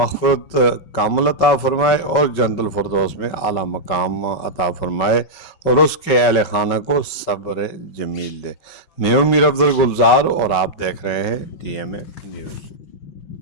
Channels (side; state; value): right; late; 5.3 ms